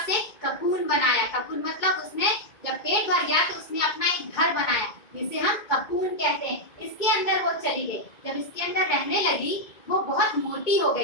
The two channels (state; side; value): late; right; 2.2 ms